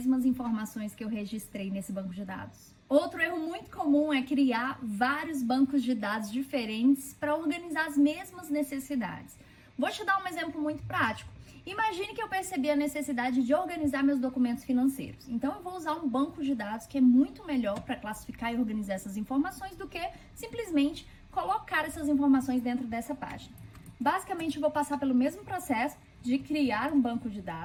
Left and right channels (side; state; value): both; identical; correlation 1.00